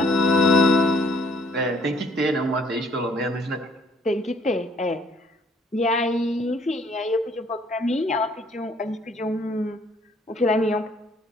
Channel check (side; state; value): both; normal; correlation 0.62